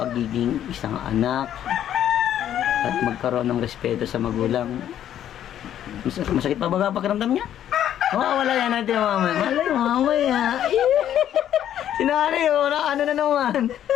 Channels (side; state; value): right; quieter; 10.8 dB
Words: isang anak at magkaroon ng respeto sa magulang. Masakit pa ba pakiramdam niya? Wala yan natin mamaya. Malay mamaya. Sinari ano na naman.